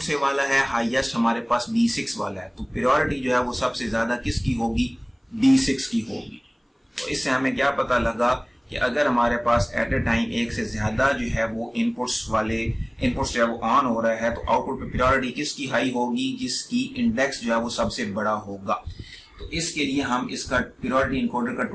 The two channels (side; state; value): both; identical; correlation 1.00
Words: वाला है? हाईएस्ट हमारे पास D6 वाला है। तो प्रायोरिटी जो है वो सबसे ज्यादा किसकी होगी? D6 की होगी। तो इससे हमें क्या पता लगा कि अगर हमारे पास एट ए टाइम एक से ज्यादा जो है वो इनपुट्स जो है वो ऑन हो रहा है तो आउटपुट पे प्रायोरिटी किसकी हाई होगी? जिसकी इंडेक्स जो है वो सबसे बड़ा होगा। तो इसके लिए हम इसका प्रायोरिटी इनकोडर का